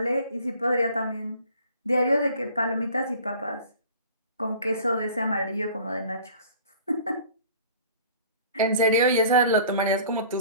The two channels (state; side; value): inverted; both; correlation -0.48